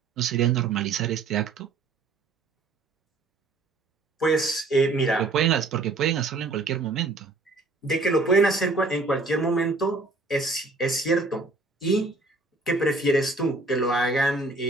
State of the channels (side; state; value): left; quieter; 3.4 dB